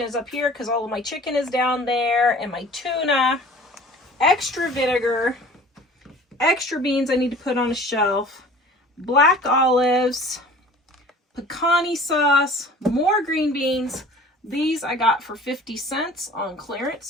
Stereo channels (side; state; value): both; normal; correlation 0.45